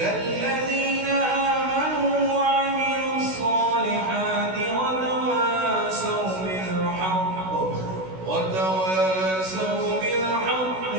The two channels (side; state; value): left; late; 16 ms